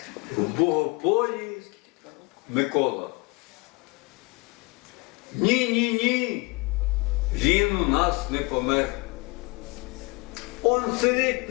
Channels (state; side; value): quieter; right; 26.9 dB